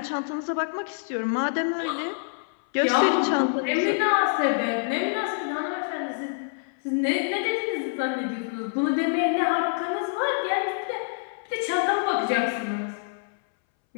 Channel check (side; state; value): right; silent; 61 dB below the other